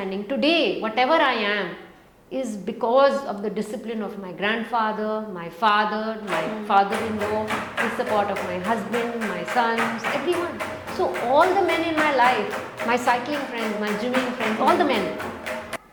Today, whatever I am is because of the discipline of my grandfather, my father, my father-in-law, the support of my husband, my sons, everyone. So all the men in my life, my cycling friends, my gymming friends, all the men,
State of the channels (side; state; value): both; identical; correlation 1.00